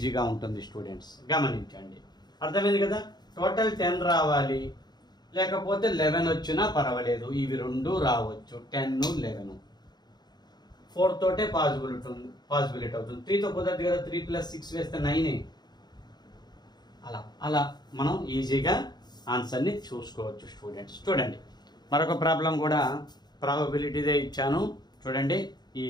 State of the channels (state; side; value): late; right; 0.20 ms